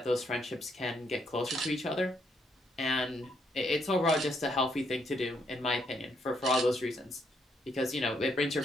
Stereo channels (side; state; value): both; normal; correlation 0.74